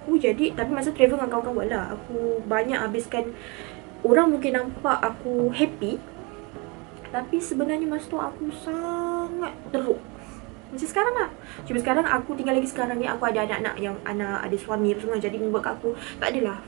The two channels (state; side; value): quieter; left; 29.0 dB